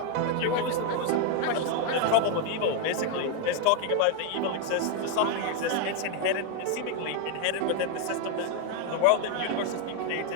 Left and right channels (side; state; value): both; different; correlation 0.01